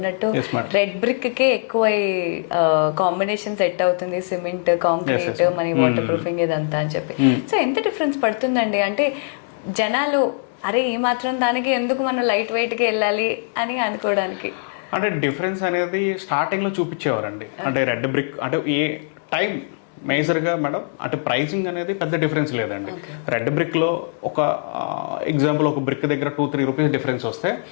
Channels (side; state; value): right; silent; 64 dB below the other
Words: రెడ్ బ్రిక్కే ఎక్కువ కాంబినేషన్ సెట్ అవుతుంది, సిమెంట్, కాంక్రీట్, మన వాటర్ ప్రూఫింగ్ ఇదంతా అని చెప్పి. సో ఎంత డిఫరెన్స్ పడుతుందండి? అంటే జనాలు అరే ఈ మాత్రం దానికి ఎందుకు మనం లైట్ వెయిట్కి వెళ్ళాలి అని అనుకోవడానికి. అంటే డిఫరెన్స్ అనేది స్టార్టింగ్లో చూపించేవారండి. అంటే రెడ్ బ్రిక్ అంటే ఏ టైం మేజర్గా మేడం అంటే ప్రైసింగ్ అనేది పెద్ద డిఫరెన్స్ లేదండి. రెడ్ బ్రిక్లో ఒక ఎగ్జాంపుల్ ఒక బ్రిక్ దగ్గర 2-3 రూపీస్ డిఫరెన్స్ వస్తే